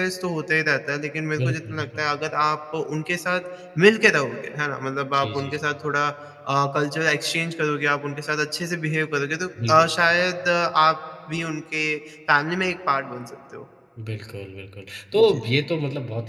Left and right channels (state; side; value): identical; both; correlation 1.00